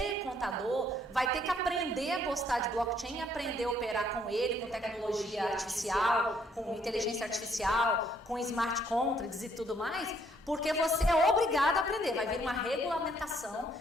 contador, vai ter que aprender a gostar de blockchain, aprender a operar com ele, com tecnologia artificial, com inteligência artificial, com smart contracts e tudo mais, porque você é obrigado a aprender. Vai vir uma regulamentação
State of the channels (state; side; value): normal; both; correlation 0.67